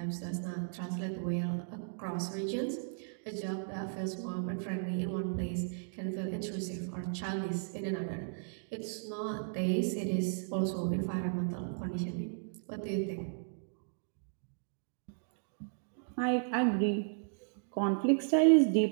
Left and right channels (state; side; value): silent; left; digital silence